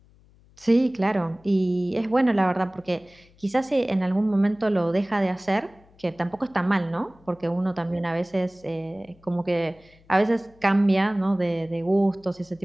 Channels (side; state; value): left; noise; hum, 29 dB below the sound